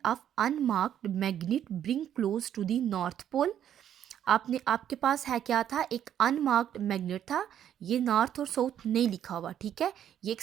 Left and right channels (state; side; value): quieter; left; 10.1 dB